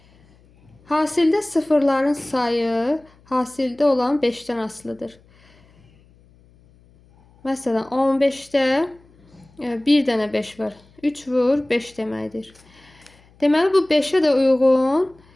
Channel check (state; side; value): noise; left; hum, 30 dB below the sound